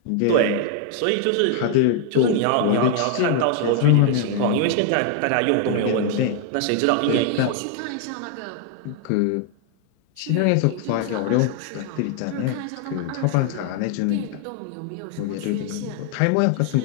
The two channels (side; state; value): both; different; correlation 0.00